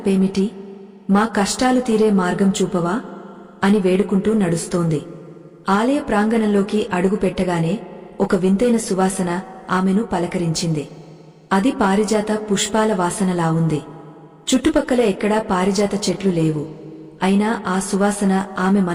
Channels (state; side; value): identical; both; correlation 1.00